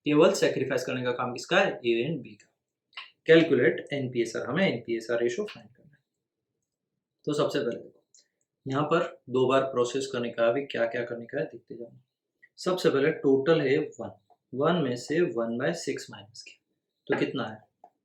केवल सेक्रीफाइस करने का काम किसका है ए एंड बी का। कैलकुलेट एनपीएसआर, हमें एनपीएसआर रेशियो फाइंड करना है। तो सबसे पहले देखो यहाँ पर 2 बार प्रोसेस करने का, अभी क्या क्या करने का है देखते जाना। सबसे पहले टोटल है 1 में से 1/6 माइनस किया, तो कितना है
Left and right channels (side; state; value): both; identical; correlation 1.00